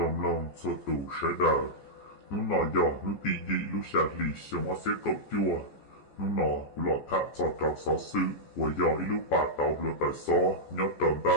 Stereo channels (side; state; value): right; late; 14 ms